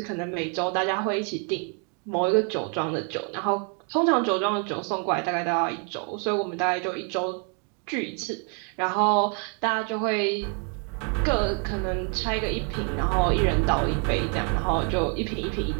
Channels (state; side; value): quieter; left; 39.7 dB